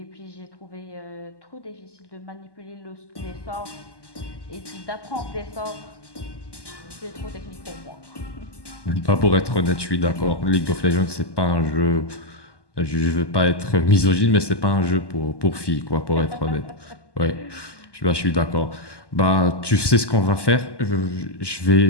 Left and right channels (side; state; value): right; late; 1.2 ms